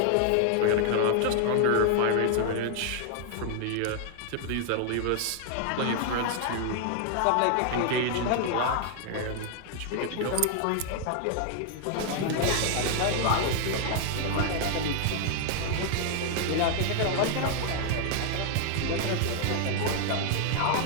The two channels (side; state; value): both; different; correlation 0.00